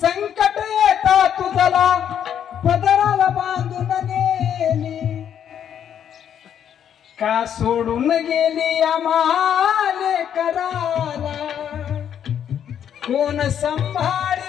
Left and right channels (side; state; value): right; quieter; 9.1 dB